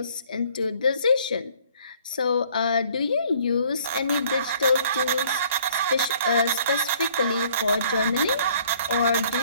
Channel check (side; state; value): both; inverted; correlation -0.58